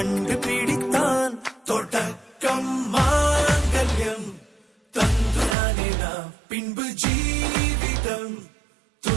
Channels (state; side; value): drops out; left; at 5.6 s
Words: பிடித்தான். தொடக்கம் மாங்கல்யம் தந்துனானே நாம் பின்பு ஜீவிதம்